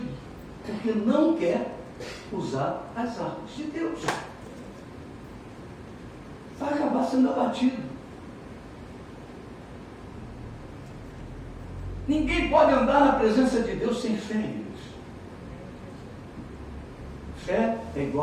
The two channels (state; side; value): identical; both; correlation 1.00